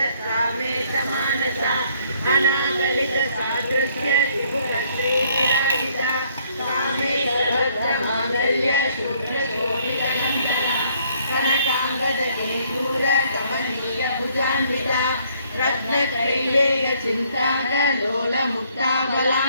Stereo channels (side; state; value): both; inverted; correlation -0.65